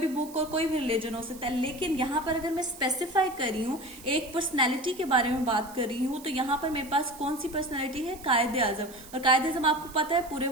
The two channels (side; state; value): right; noise; hiss, 19 dB below the sound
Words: बुक और कोई भी रिलीजन हो सकता है। लेकिन यहाँ पर अगर मैं स्पेसिफाई कर रही हूँ, एक पर्सनैलिटी के बारे में बात कर रही हूँ, तो यहाँ पर मेरे पास कौन सी पर्सनैलिटी है? कायदे आजम। और कायदे आजम आपको पता है पूरे